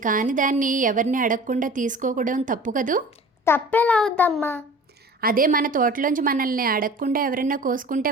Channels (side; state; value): both; normal; correlation 0.42